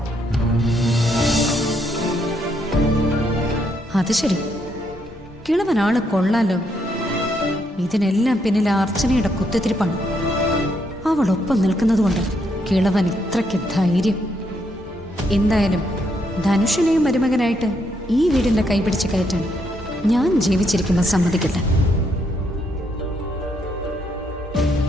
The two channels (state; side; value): normal; both; correlation 0.75